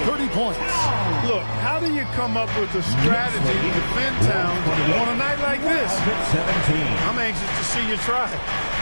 30 points. Look, how do you come up with a strategy to defend Towns on a night like this? I'm anxious to see you try it.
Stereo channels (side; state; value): both; inverted; correlation -1.00